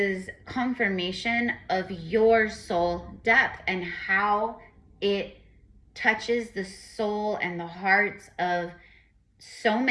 confirmation of your soul depth and how it touches the soul and the hearts of so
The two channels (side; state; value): both; identical; correlation 1.00